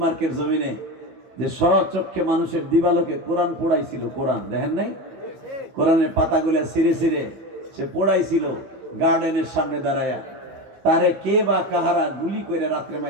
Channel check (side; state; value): left; late; 15 ms